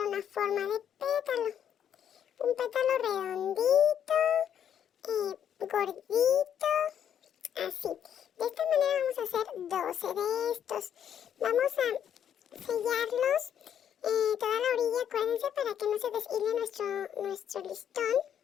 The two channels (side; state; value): right; quieter; 9.2 dB